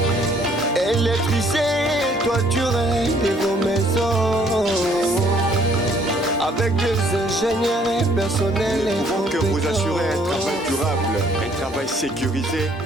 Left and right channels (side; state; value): both; normal; correlation 0.62